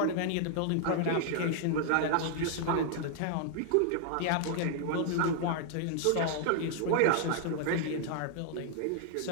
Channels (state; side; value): different; both; correlation 0.00